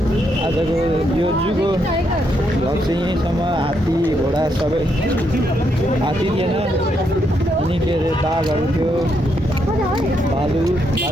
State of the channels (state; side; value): normal; both; correlation 0.78